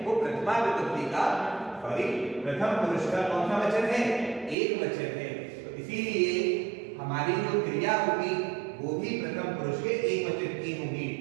वो प्रथमा विभक्ति का प्रथम पुरुष का कौन सा वचन है? एक वचन है। तो इसीलिए हमारी जो क्रिया होगी वो भी प्रथम पुरुष के एक वचन की होगी।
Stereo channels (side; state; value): left; drops out; at 4.5 s